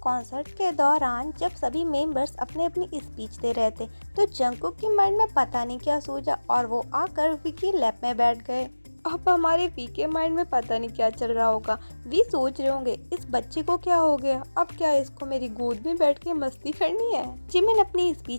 के दौरान जब सभी मेंबर्स अपनी अपनी स्पीच दे रहे थे, तो जंगकुक की माइंड में पता नहीं क्या सूझा और वो आकर वी की लैप में बैठ गए। अब हमारे वी के माइंड में पता नहीं क्या चल रहा होगा। वी सोच रहे होंगे इस बच्चे को क्या हो गया, अब क्या इसको मेरी गोद में बैठ के मस्ती करनी है। जिमिन अपनी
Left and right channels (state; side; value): inverted; both; correlation -1.00